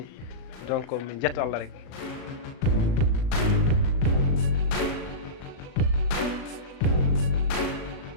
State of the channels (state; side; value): late; right; 37 ms